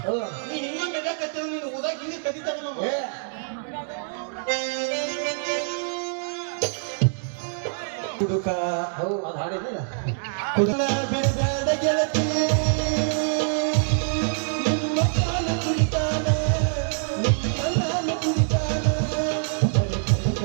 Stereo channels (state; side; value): silent; left; digital silence